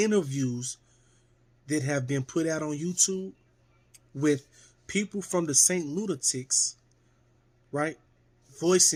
that have been put out on YouTube with people from the Saint Lunatics, right,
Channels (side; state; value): both; identical; correlation 1.00